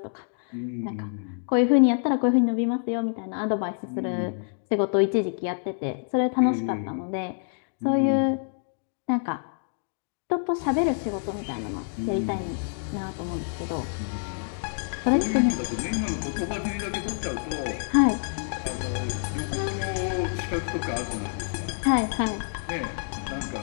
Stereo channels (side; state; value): right; silent; digital silence